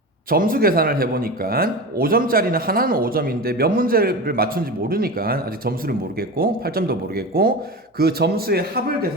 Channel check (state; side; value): normal; both; correlation 0.27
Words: 점수 계산을 해보니까 5점짜리는 하나는 5점인데 몇 문제를 맞춘지 모르니까 아직 점수를 모르겠고 8점도 모르겠고 그 점수의 합을